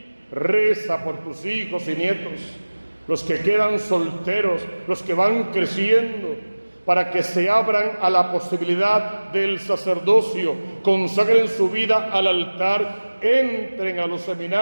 Reza por tus hijos y nietos, los que quedan solteros, los que van creciendo, para que se abran a la posibilidad del sacerdocio, consagren su vida al altar, entren a los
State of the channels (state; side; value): inverted; both; correlation -1.00